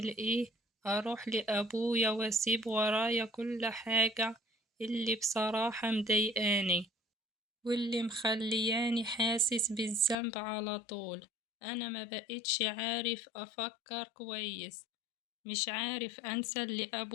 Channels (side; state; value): right; drops out; at 10.2 s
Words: إيه، أروح لأبويا وأسيب ورايا كل حاجة اللي بصراحة مضايقاني واللي مخلياني حاسس بالذنب على طول. أنا ما بقيتش عارف أفكر كويس، مش عارف أنسى اللي